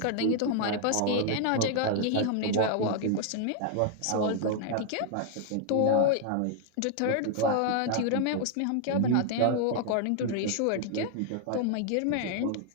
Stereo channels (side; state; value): both; different; correlation 0.00